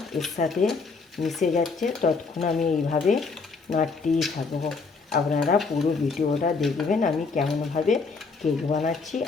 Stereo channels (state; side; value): quieter; right; 4.5 dB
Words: এর সাথে মিশে যাচ্ছে ততক্ষণ আমি এইভাবে নাড়তেই থাকবো। আপনারা পুরো ভিডিওটা দেখবেন আমি কেমনভাবে কেক বানাচ্ছি।